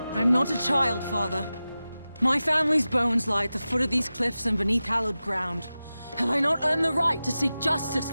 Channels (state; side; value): inverted; both; correlation -0.95